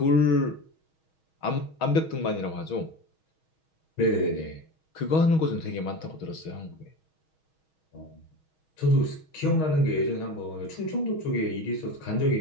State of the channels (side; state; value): right; late; 6.3 ms